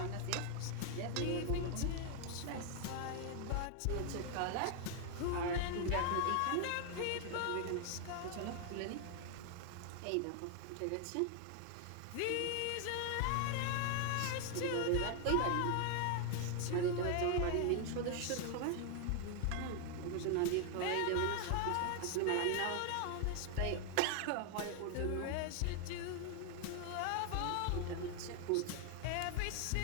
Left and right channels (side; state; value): both; different; correlation 0.00